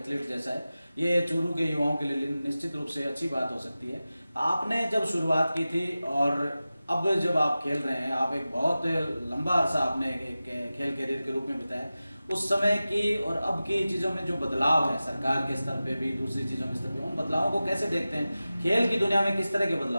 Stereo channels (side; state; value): both; inverted; correlation -0.95